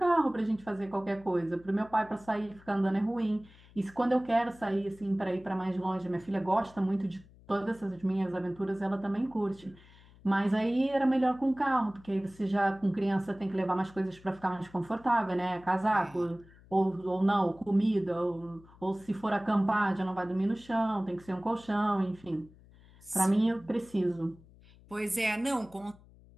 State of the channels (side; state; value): left; noise; hum, 24 dB below the sound